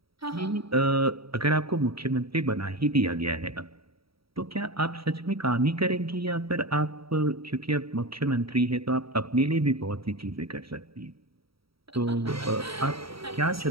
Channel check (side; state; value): left; late; 0.75 ms